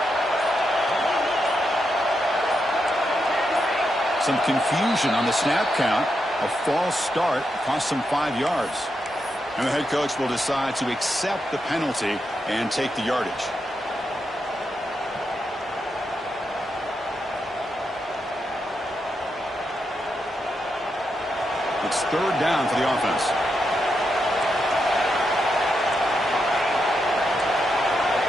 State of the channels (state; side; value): normal; both; correlation 0.84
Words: Some confusion on the snap count. A false start cost them 5 yards. And the head coach will decide to accept the penalty and take the yardage. It's third down for the offense.